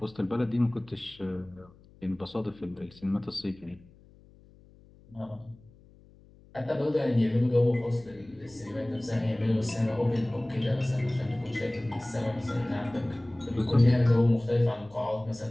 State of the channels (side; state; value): left; noise; hum, 26 dB below the sound